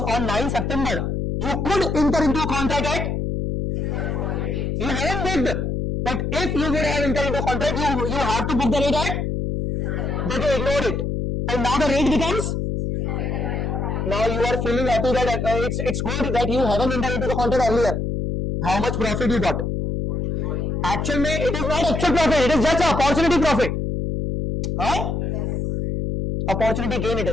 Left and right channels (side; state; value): left; noise; hum, 1 dB below the sound